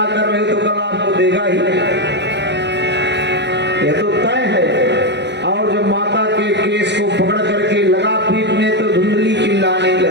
कर रहे तो कल आपको देगा ही, यह तो तय है। और जब माता के केस को पकड़ करके लगा पीटने तो धुंधली चिल्लाने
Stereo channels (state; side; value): late; left; 0.51 ms